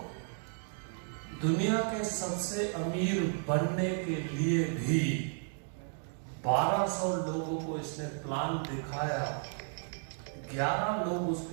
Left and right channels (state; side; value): silent; left; 55 dB below the other